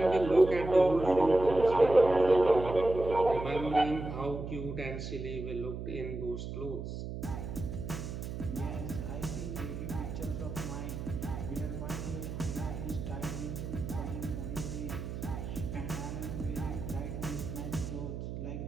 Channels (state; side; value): noise; right; hum, 7 dB below the sound